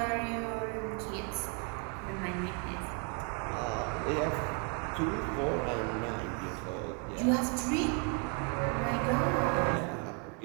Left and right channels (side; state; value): left; quieter; 36.5 dB